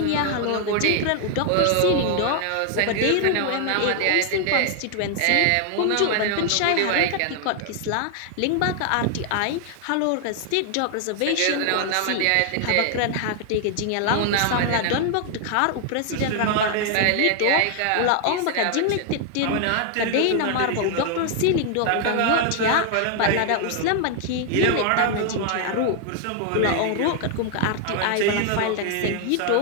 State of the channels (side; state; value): both; different; correlation 0.00